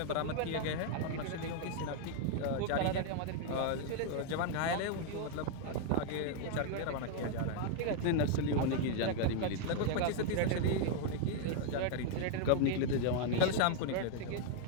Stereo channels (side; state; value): both; different; correlation 0.00